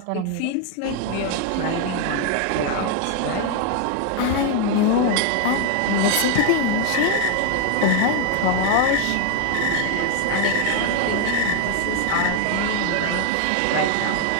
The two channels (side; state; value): both; different; correlation 0.01